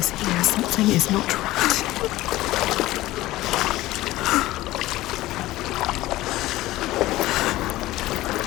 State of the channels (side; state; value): right; quieter; 17.0 dB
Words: here. Something is not right.